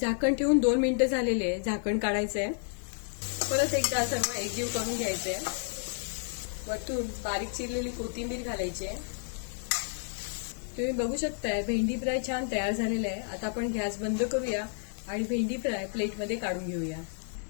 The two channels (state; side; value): silent; right; 57 dB below the other